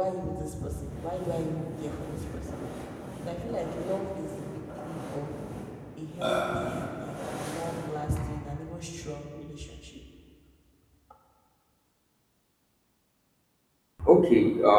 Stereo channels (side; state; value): both; identical; correlation 1.00